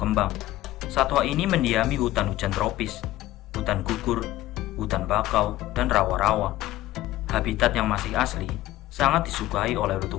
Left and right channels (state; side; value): quieter; right; 15.7 dB